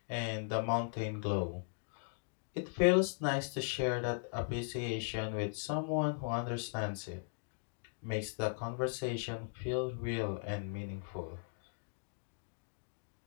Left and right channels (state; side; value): silent; right; digital silence